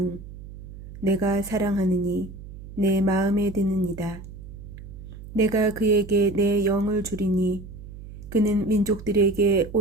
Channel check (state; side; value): noise; right; hum, 14 dB below the sound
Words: 내가 사랑하느니 내 마음에 드느니다. 내가 그에게 내 영을 주리니 그는 민족들에게